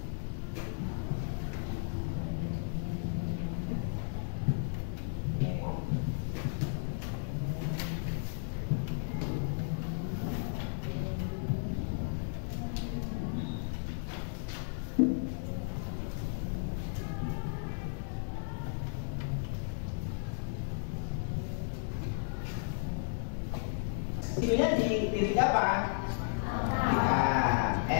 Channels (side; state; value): right; silent; 55 dB below the other